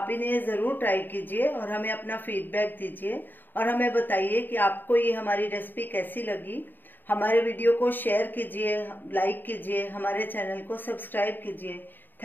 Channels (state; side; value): late; right; 0.092 ms